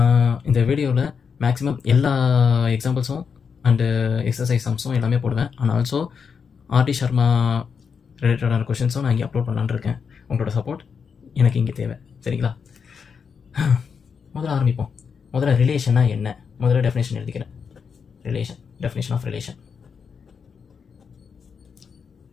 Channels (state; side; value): quieter; right; 6.2 dB